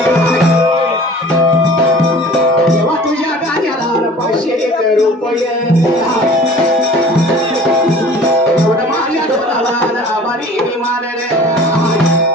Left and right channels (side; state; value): both; normal; correlation 0.46